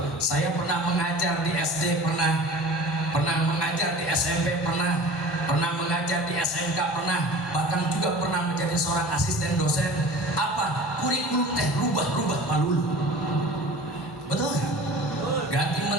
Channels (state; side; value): normal; both; correlation 0.40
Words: Saya pernah mengajar di SD, pernah mengajar di SMP, pernah mengajar di SMK, bahkan juga pernah menjadi seorang asisten dosen. Apa? Kurikulum teh rubah-rubah palulu. Betul? Ganti